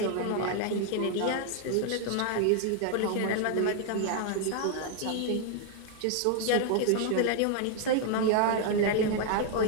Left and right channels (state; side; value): different; both; correlation 0.00